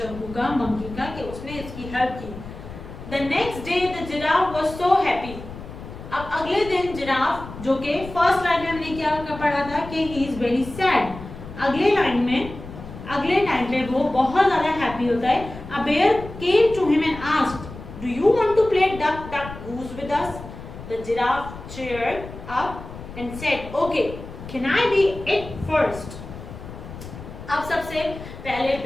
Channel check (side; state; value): left; noise; rumble, 13 dB below the sound